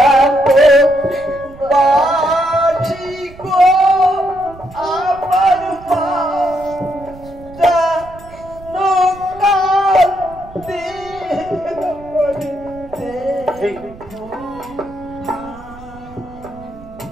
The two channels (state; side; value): noise; right; rumble, 19 dB below the sound